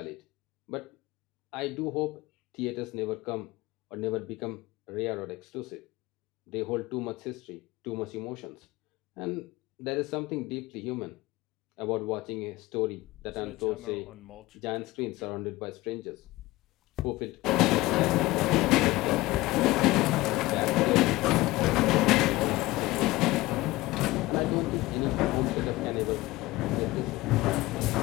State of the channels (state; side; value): quieter; right; 19.4 dB